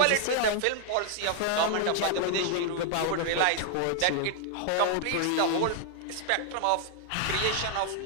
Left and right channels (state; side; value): different; both; correlation 0.00